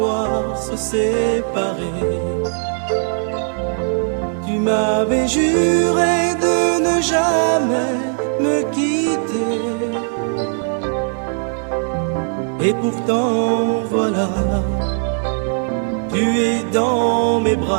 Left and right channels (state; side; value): silent; left; digital silence